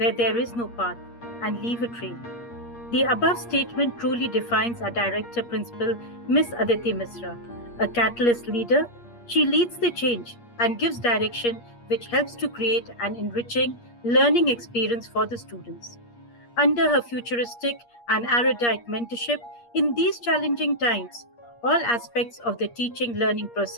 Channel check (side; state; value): right; late; 8.5 ms